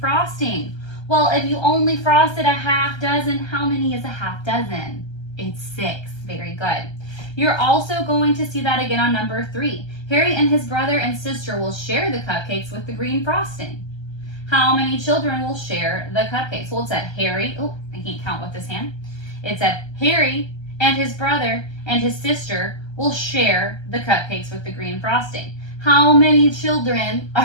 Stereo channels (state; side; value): late; right; 1.3 ms